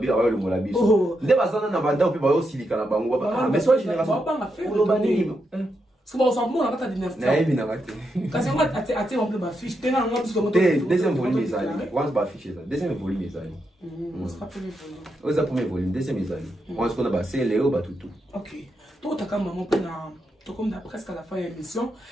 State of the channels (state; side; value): normal; both; correlation 0.83